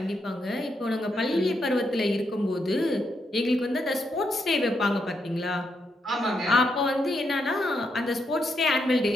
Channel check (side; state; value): both; normal; correlation 0.80